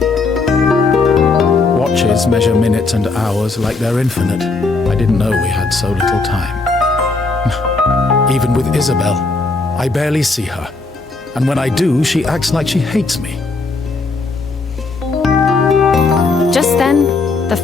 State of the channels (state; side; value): quieter; right; 3.8 dB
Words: Watches measure minutes and hours like they're infinite. I didn't know we had so little time. Even with Isabel, I barely see her. And when I do, she acts like she hates me. Just then, the